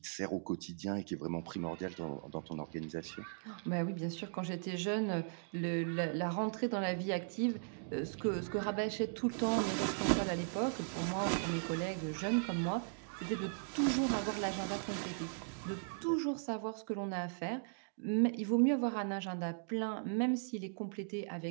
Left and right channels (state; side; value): silent; left; digital silence